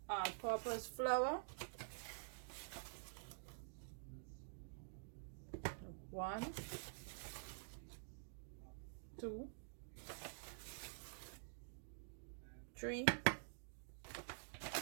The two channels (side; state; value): left; silent; digital silence